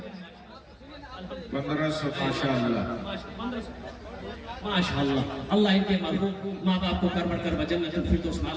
1500 माशाल्लाह माशाल्लाह। अल्लाह इनके मरहूम माँ बाप को करवट कर जन्नत फिरदौस में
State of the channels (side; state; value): both; identical; correlation 1.00